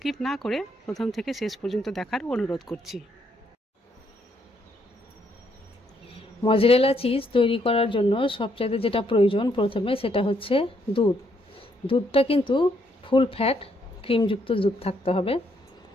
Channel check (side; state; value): both; normal; correlation 0.73